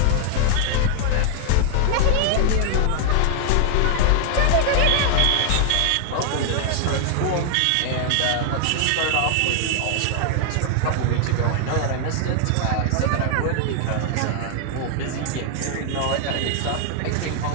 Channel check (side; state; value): both; different; correlation 0.00